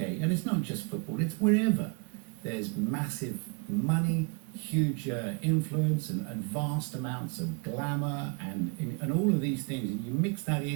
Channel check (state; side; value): quieter; left; 32.7 dB